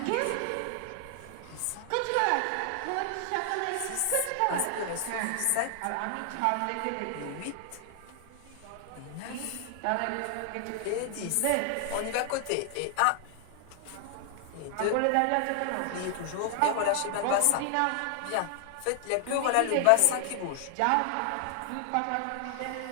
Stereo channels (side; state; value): both; different; correlation 0.00